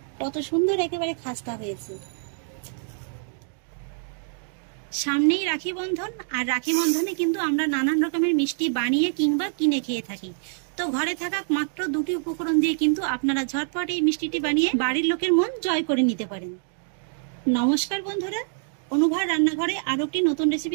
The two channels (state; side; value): silent; left; digital silence